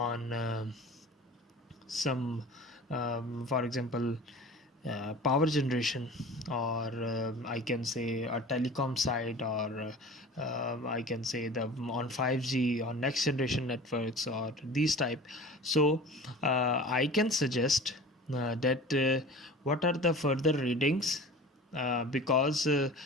some for example, power generation, or I can say a telecom side, or I can say the on 5G or next generation networks, or these type. So I can suggest that what are the further readings, because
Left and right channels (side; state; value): both; normal; correlation 0.39